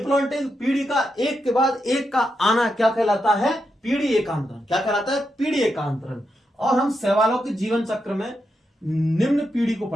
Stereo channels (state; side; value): normal; both; correlation 0.85